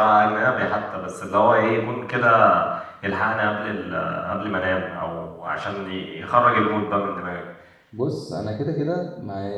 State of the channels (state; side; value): identical; both; correlation 1.00